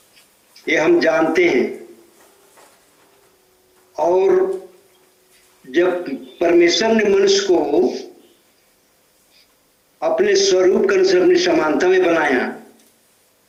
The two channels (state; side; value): identical; both; correlation 1.00